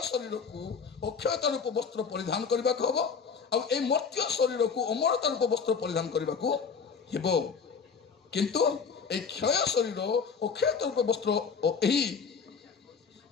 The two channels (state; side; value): quieter; right; 5.8 dB